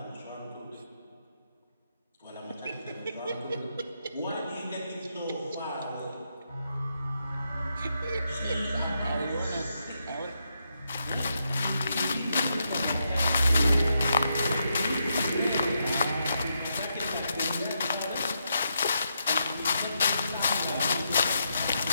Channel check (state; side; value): inverted; both; correlation -0.82